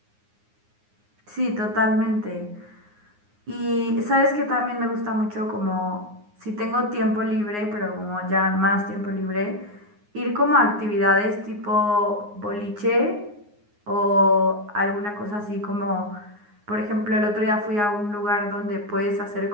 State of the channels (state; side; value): late; left; 9.6 ms